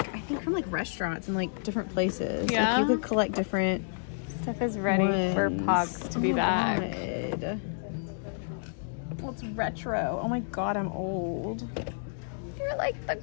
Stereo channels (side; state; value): right; silent; digital silence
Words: I think from like restaurants and like different places. Yeah? Like you could collect different Steph is ready for ones. Pogs to be my back. God. Well, it's retro. Oh my god, I'm old. You're like the